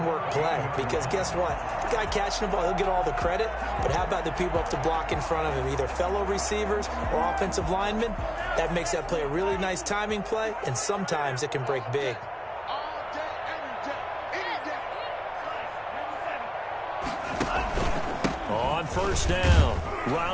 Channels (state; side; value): identical; both; correlation 1.00